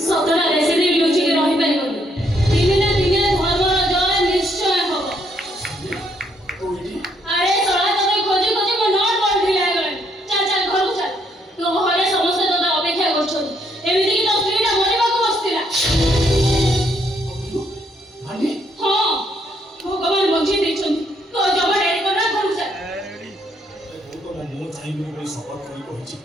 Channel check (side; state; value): both; normal; correlation 0.71